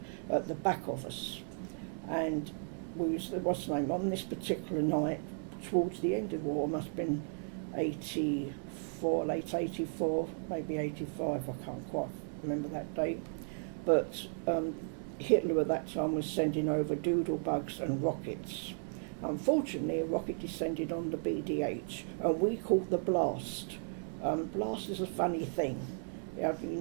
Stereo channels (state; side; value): silent; left; 54 dB below the other